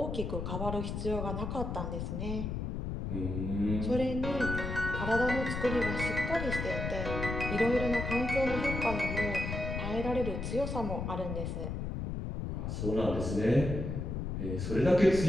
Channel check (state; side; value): noise; left; rumble, 3 dB below the sound